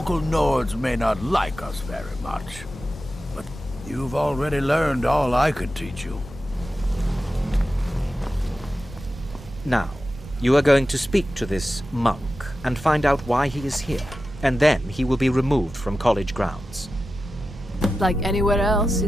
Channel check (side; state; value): both; normal; correlation 0.93